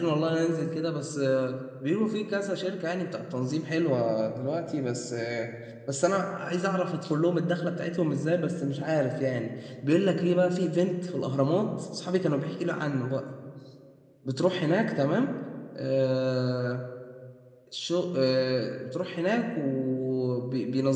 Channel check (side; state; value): both; identical; correlation 1.00